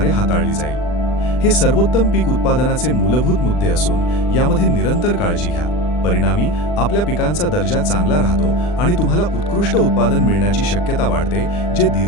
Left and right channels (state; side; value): late; right; 40 ms